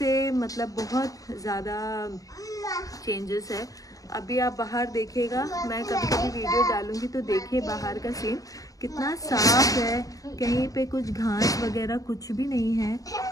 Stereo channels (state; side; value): late; right; 0.17 ms